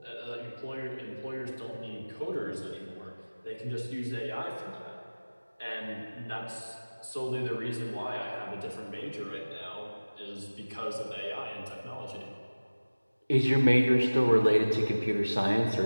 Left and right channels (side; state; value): both; inverted; correlation -1.00